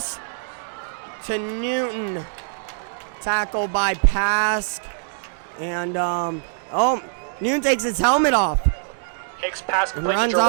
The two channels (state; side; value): silent; left; digital silence